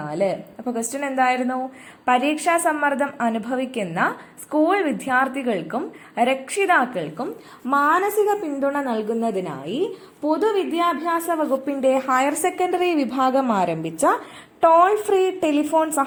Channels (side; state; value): both; identical; correlation 1.00